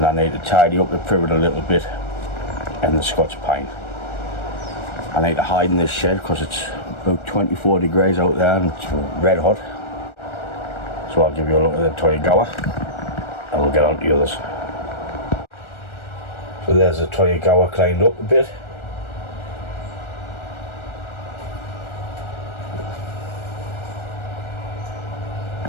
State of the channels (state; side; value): late; right; 1.4 ms